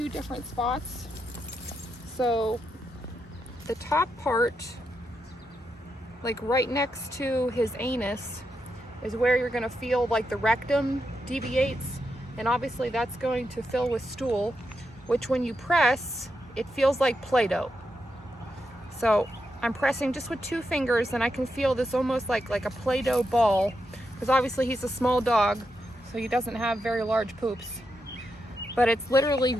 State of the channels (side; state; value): both; normal; correlation 0.84